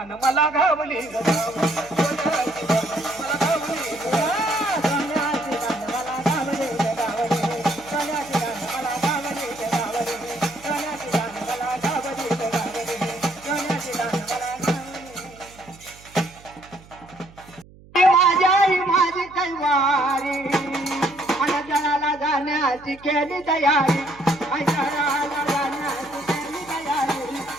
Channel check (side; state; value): right; noise; hum, 23 dB below the sound